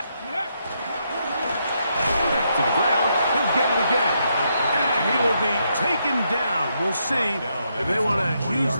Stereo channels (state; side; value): inverted; both; correlation -0.78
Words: it. Back to the ground. He'll get it again. And he will be taken down. We'll see if they want to use